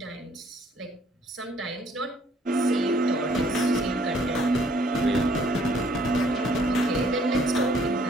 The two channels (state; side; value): normal; both; correlation 0.63